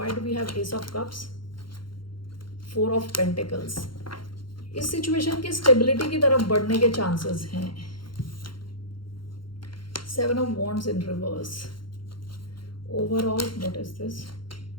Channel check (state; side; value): late; right; 0.73 ms